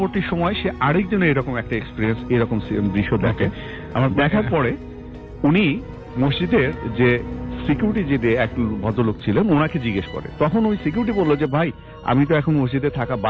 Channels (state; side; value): identical; both; correlation 1.00